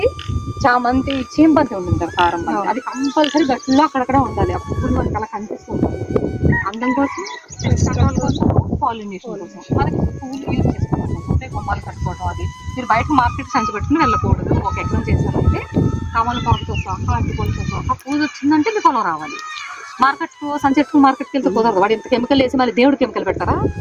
చామంతి, చీంబంతి ఉంటుంది కారం బంతి, అది కంపల్సరీ గట్టిలో అక్కడక్కడ ఉండాలి. ఆ పువ్వులు మనకి అలా కనిపిస్తుంటారు. అందం కోసం, రకాల కోసం, పాలినేషన్ కోసం మనకి పువ్వులు యూజ్ చేసుకోవాలి. అంటే గుమ్మాలు కట్టుకోవడం. అది మీరు బయట మార్కెట్ సంచి పెట్టుకుని వెళ్ళకూడదు. ఒక ఎకరం చేశారంటే తమలపాకుతో సహా, అరటిపళ్ళతో సహా పూజ వచ్చిందంటే మీకు పొలం రావాలి. మార్కెట్కి వెళ్తే కుదరదు. వాడు ఇంత కెమికల్ వేసి మళ్ళీ దేవుడు కెమికల్ పెట్టారా?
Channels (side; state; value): both; identical; correlation 1.00